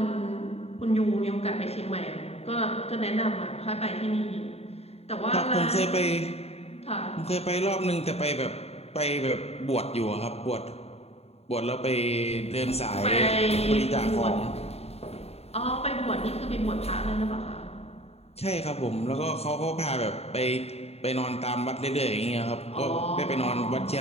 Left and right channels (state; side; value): late; right; 0.30 ms